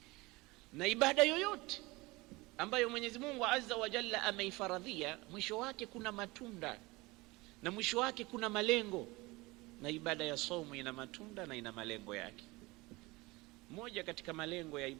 Na ibada yoyote ambayo Mwenyezi Mungu Azza wa Jalla ameifaradhia, mwisho wake kuna matunda na mwisho wake kuna malengo. Na ibada ya somo ina matunda na ina malengo yake. Moja katika malengo ya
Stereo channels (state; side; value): quieter; left; 22.6 dB